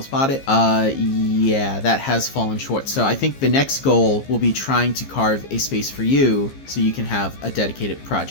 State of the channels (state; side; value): late; right; 15 ms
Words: bought it. Yeah, that has fallen short. So I think the next goal will be trying to carve a space for you so you can have a dedicated